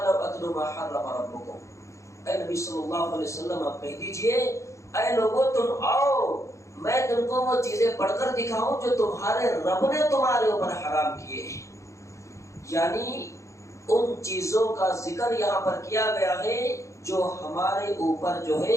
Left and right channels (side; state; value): right; late; 0.15 ms